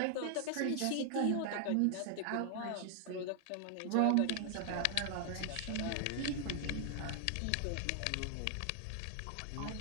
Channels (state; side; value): different; both; correlation 0.00